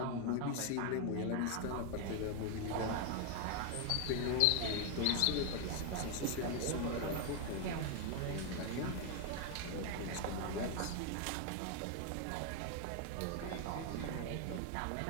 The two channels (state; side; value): different; both; correlation 0.01